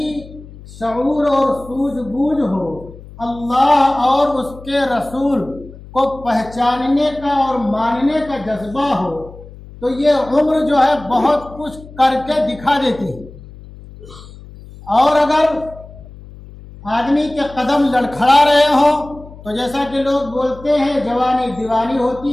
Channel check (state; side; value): noise; left; hum, 18 dB below the sound